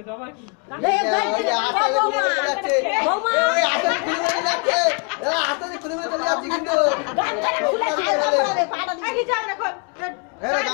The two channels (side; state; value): right; quieter; 34.0 dB